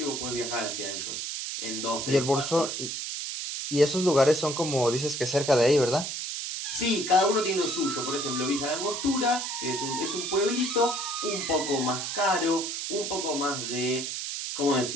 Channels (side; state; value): right; noise; hiss, 4 dB below the sound